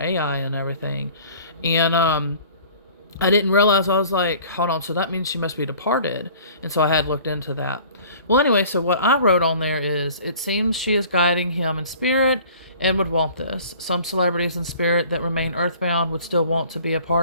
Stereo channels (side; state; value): both; inverted; correlation -0.48